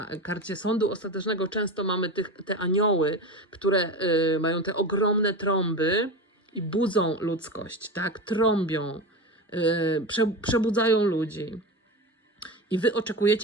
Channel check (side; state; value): both; normal; correlation 0.24